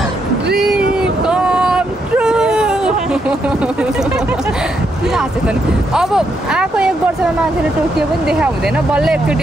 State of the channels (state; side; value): normal; both; correlation 0.79